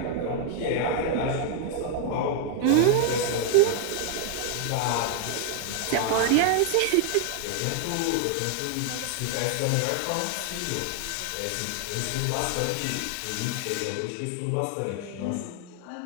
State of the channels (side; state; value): both; different; correlation 0.00